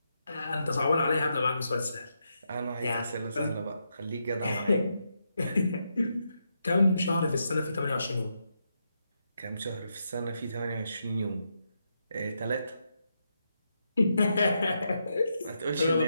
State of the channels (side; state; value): both; inverted; correlation -0.83